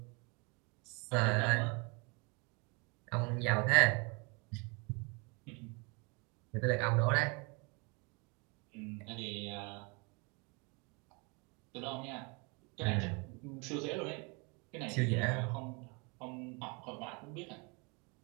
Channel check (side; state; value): left; quieter; 31.0 dB